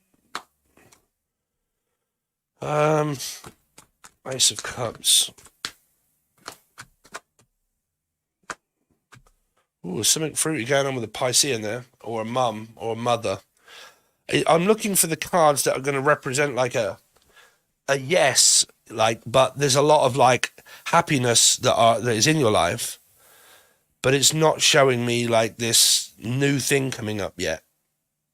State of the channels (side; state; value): both; identical; correlation 1.00